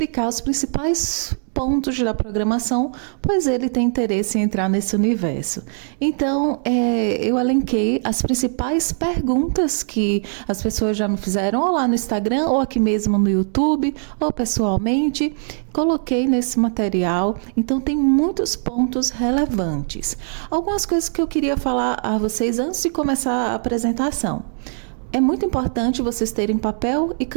os principais pontos da programação, pois ele tem interesse em entrar nesse universo. Então, eu elenquei as principais perguntas que as pessoas já me fizeram, ou lá no Instagram, ou aqui mesmo no YouTube, ou pessoalmente. Coloquei nesse material, então tem muitos pontos relevantes. Algumas coisas que eu queria falar a vocês antes de começar a apresentação. É muito importante vocês terem papel e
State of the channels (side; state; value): left; silent; digital silence